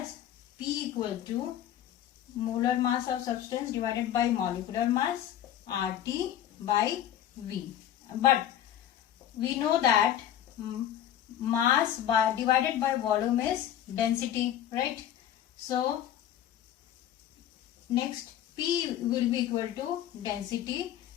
P equal to molar mass of substance divided by molecular mass, RT by V. But we know that mass divided by volume is density, right? So next P will be equal to density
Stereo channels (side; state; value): right; quieter; 11.0 dB